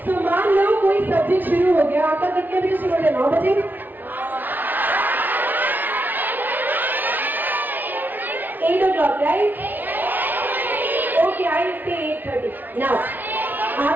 सो मान लो कोई सब्जेक्ट शुरू हो गया, आपका कितने बजे शुरू हो गया? 9 बजे। एट ओ क्लॉक, राइट? ओके, आई से 8:30। नाउ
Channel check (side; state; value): left; late; 0.087 ms